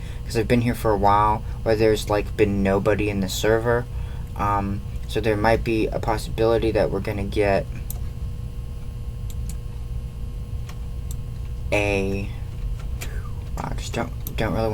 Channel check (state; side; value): identical; both; correlation 1.00